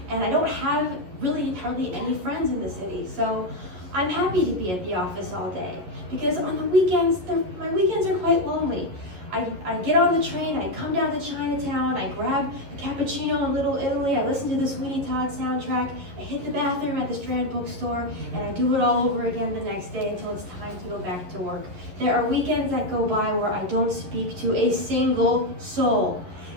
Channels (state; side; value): late; left; 11 ms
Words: and I don't have really hardly any friends in the city. So I'm happy to be at the office all day because on the weekends, my weekends are quite lonely. I get on the train, I come down to Chinatown, I grab a cappuccino in Little Italy, I listen to the Sweeney Todd soundtrack, I hit the bathroom at the Strand bookstore, and I do it all over again the next day until it's time to go back to work. There are weekends that go by where I don't speak to a single soul.